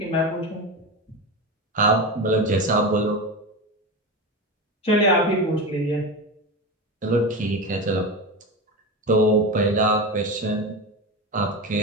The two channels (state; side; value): normal; both; correlation 0.21